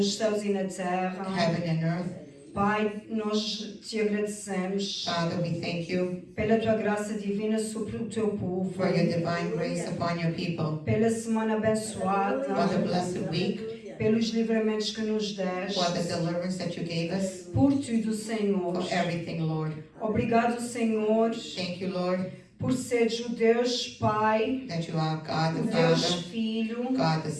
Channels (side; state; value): both; identical; correlation 1.00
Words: céus e na terra. heaven and earth. Pai, nós te agradecemos Father, we thank you pela tua graça divina sobre o teu povo, for your divine grace upon your people, pela semana for the abençoada, blessed week, pelos livramentos que nos deste, for the deliverance that you gave us, por tudo, Senhor. for everything, Lord. Obrigado, Senhor, Thank you, Lord, por seres o Deus Pai, that you are God o the Deus Father, Filho, God the